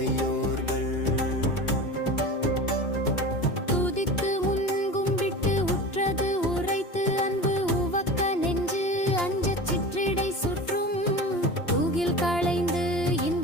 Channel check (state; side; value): late; right; 2.9 ms